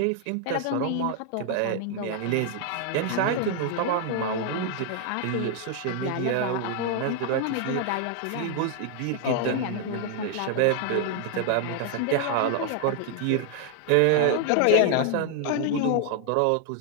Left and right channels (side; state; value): both; different; correlation 0.00